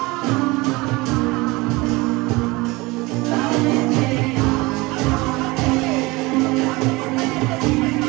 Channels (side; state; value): left; quieter; 22.9 dB